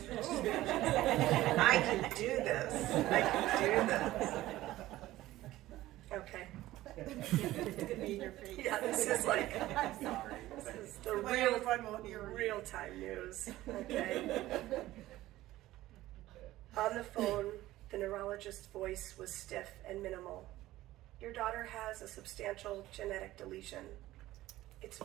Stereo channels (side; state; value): left; quieter; 16.0 dB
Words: I can do this. Okay. It's gonna be in your face. Yeah, this is like, I'm sorry. this is the real time news. Okay. On the phone, the neurologist's voice was stiff and minimal. Your daughter has a substantial genetic deletion. It's